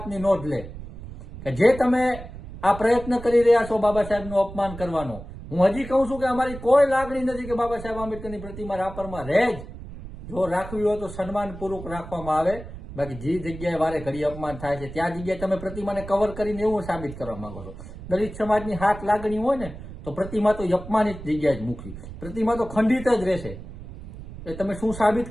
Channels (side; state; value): right; noise; rumble, 13 dB below the sound